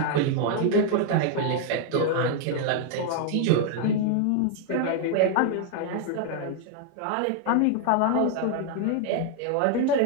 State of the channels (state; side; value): different; both; correlation 0.00